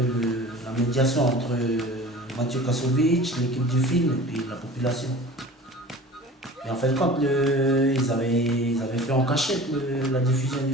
la médiation entre Mathieu Kassovitch, l'équipe du film et puis la population. Et en fait, quand ils avaient fait en cachette la diffusion du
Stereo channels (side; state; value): both; normal; correlation 0.40